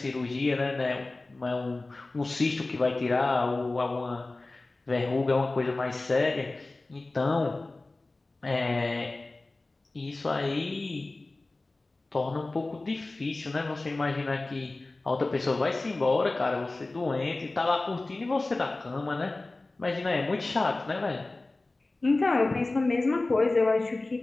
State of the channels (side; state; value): right; quieter; 3.1 dB